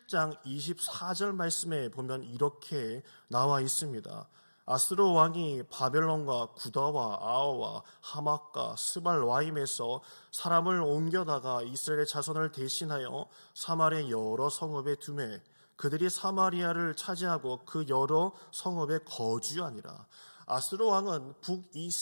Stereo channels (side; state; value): both; inverted; correlation -1.00